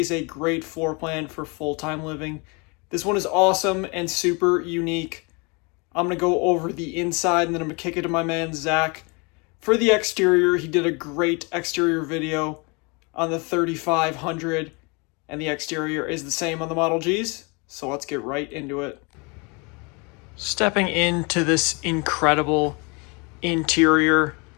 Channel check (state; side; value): quieter; right; 30.3 dB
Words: a great floor plan for full-time living. This one is awesome and super unique. I'm going to go over the inside and then I'm going to kick it to my man Zach. For the exterior, he did a great exterior video on the 3500, and the exterior is the same on the Model Gs, so let's get right into it. Stepping into this incredible interior,